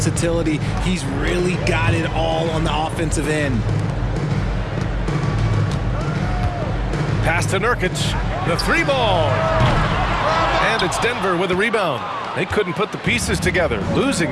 He's really got it all on the offensive end. Pass to Nurkic. The three ball. And it's Denver with a rebound. They couldn't put the pieces together,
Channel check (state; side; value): identical; both; correlation 1.00